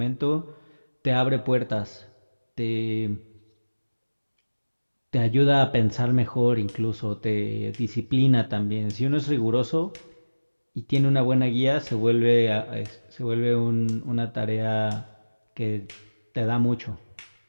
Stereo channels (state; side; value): inverted; both; correlation -1.00